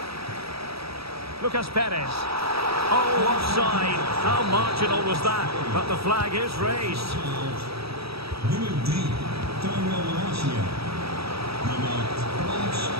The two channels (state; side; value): late; left; 0.77 ms